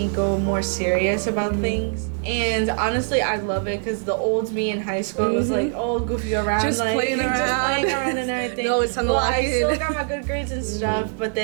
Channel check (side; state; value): left; silent; 64 dB below the other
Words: go more serious about things. And honestly, I love it because the old me in high school was like, oh, goofy around, Just like playing around. just playing around and everything. No, it's time to well, lock I in. still got my good grades and stuff, but